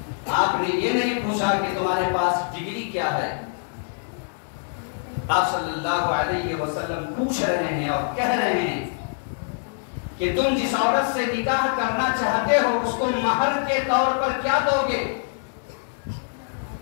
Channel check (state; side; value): silent; right; digital silence